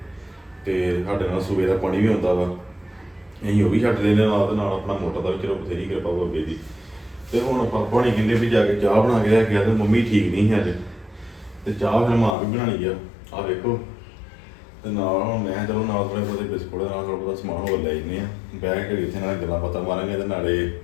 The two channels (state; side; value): drops out; right; at 12.4 s